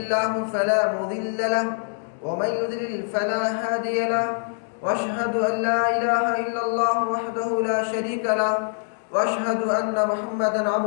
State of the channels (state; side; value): silent; right; digital silence